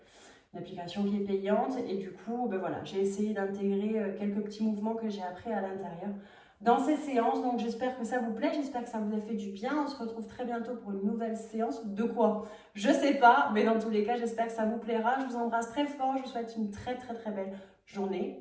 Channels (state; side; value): identical; both; correlation 1.00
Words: Une application qui est payante. Et du coup, ben voilà, j'ai essayé d'intégrer quelques petits mouvements que j'ai appris à l'intérieur dans ces séances. Donc j'espère que ça vous plaît, j'espère que ça vous a fait du bien. On se retrouve très bientôt pour une nouvelle séance. De quoi? Je sais pas, mais dans tous les cas, j'espère que ça vous plaira. Je vous embrasse très fort, je vous souhaite une très très très belle